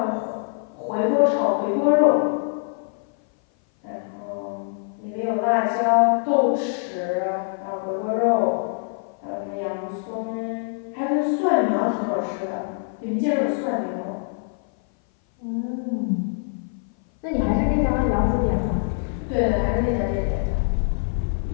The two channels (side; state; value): right; silent; 58 dB below the other